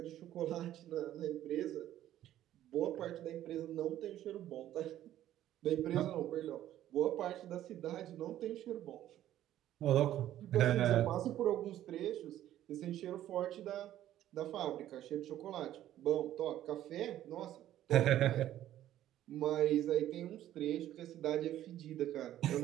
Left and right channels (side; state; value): left; quieter; 12.6 dB